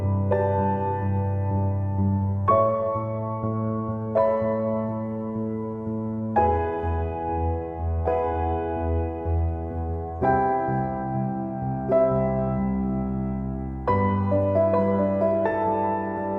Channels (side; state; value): both; identical; correlation 1.00